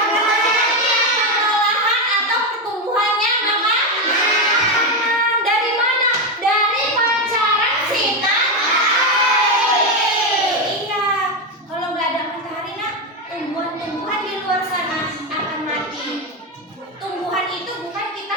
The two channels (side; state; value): both; normal; correlation 0.10